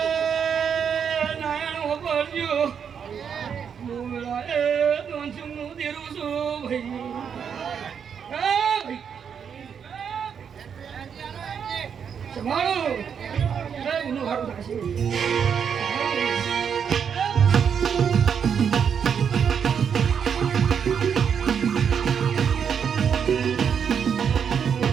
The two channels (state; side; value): quieter; left; 7.3 dB